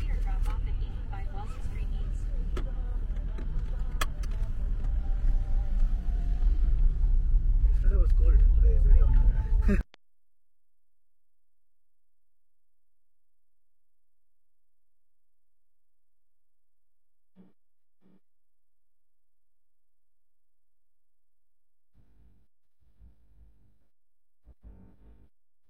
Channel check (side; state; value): both; identical; correlation 1.00